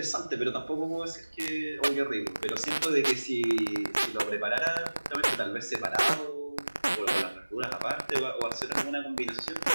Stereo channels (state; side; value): inverted; both; correlation -1.00